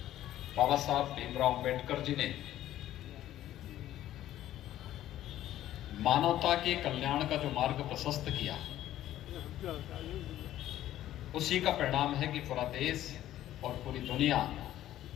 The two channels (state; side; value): quieter; right; 13.2 dB